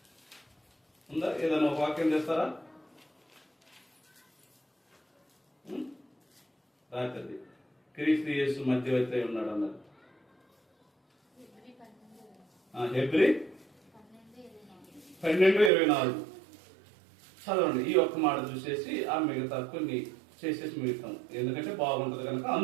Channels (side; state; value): left; drops out; at 15.7 s